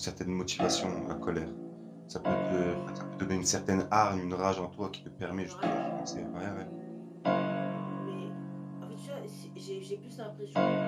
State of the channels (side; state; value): both; identical; correlation 1.00